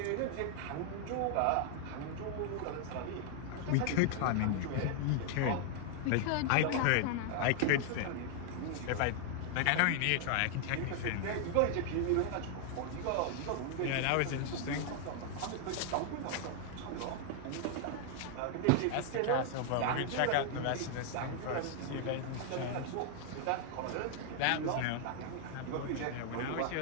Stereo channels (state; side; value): different; both; correlation 0.00